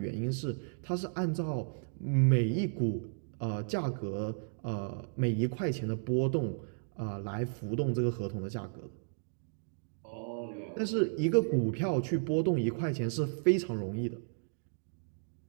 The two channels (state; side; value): silent; left; digital silence